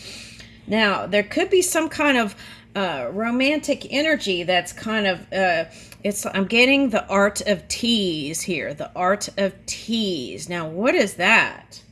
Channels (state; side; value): identical; both; correlation 1.00